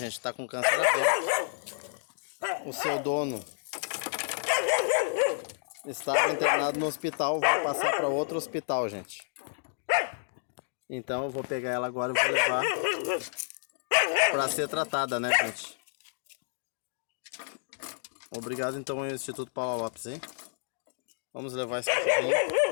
tá com câncer aberto. O seu dono estava internado no hospital, vou passar para outro hospital, gente. Então eu vou pegar ela agora e vou levar para ser tratada, né, gente? Obrigado então ao Instituto Paula Lopes, hein? Vamos levar esse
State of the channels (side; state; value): right; silent; digital silence